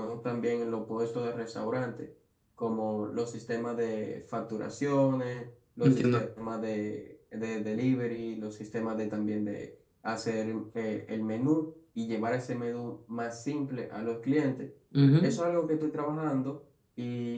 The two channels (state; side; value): identical; both; correlation 1.00